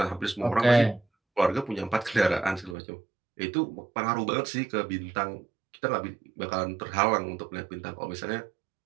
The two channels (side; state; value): left; drops out; at 2.8 s